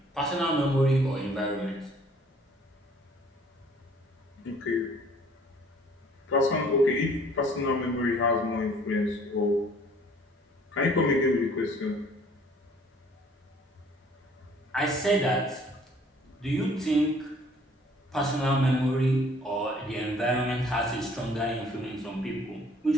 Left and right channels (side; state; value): both; normal; correlation 0.56